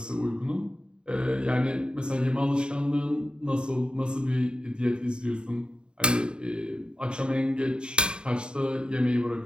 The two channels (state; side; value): late; left; 0.050 ms